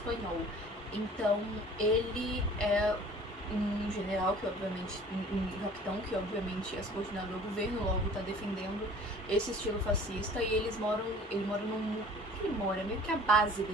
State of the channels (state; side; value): normal; both; correlation 0.48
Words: Então, ele é um general que obviamente, um capitão que obviamente é subordinado ao governo, logo tá defendendo esse estilo fascista, e ele mora num... Ele mora, meio que a base